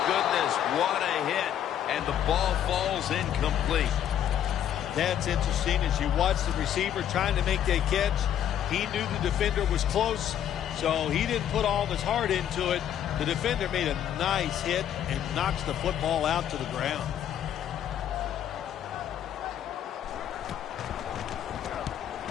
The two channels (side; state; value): right; quieter; 10.2 dB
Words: goodness, what a hit. And the ball falls incomplete. That's interesting. As you watch the receiver trying to make that catch, he knew the defender was close, so he didn't put all of his heart into it. The defender made a nice hit and knocks the football out to the ground.